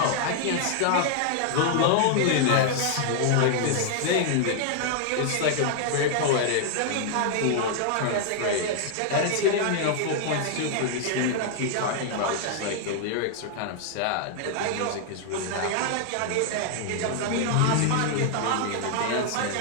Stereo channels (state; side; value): different; both; correlation 0.00